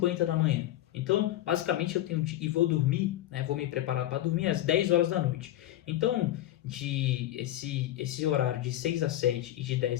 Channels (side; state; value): right; quieter; 14.0 dB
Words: da manhã. Então, basicamente eu tenho e vou dormir, vou me preparar para dormir às 10 horas da noite. Então, esse horário de 6 às 7 e de